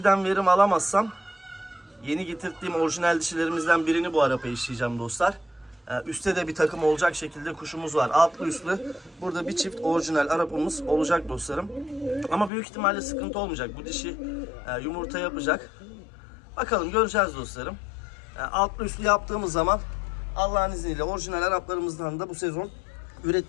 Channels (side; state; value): right; drops out; at 12.5 s